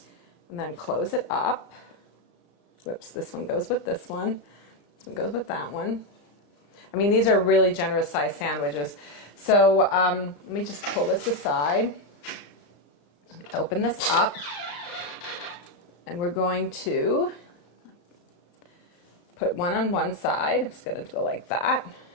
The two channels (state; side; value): late; right; 35 ms